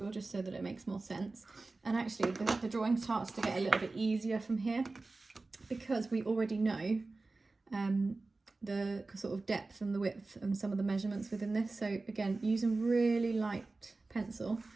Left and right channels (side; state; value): left; quieter; 3.4 dB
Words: just so that it makes more sense. And actually the drawing starts to get a little bit easier from here because we already know the sort of depth and the width and some of the measurements within this. So again, using really light pencil